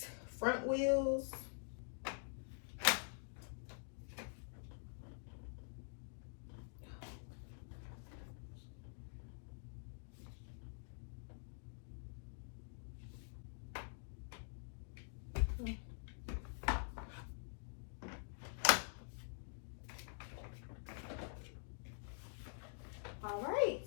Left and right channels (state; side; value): silent; right; digital silence